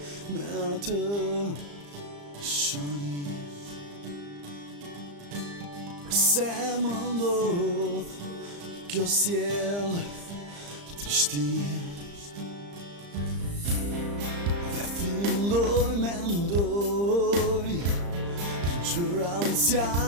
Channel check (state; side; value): late; left; 35 ms